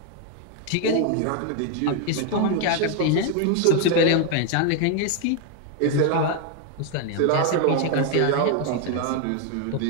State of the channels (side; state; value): both; different; correlation 0.01